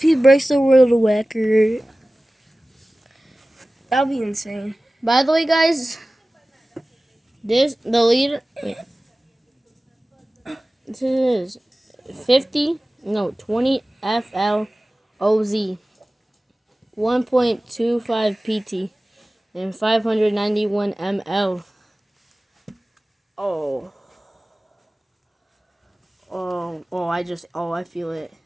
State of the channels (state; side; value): normal; both; correlation 0.97